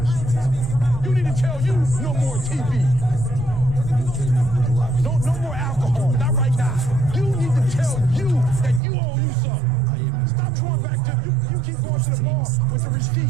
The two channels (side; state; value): left; drops out; at 8.8 s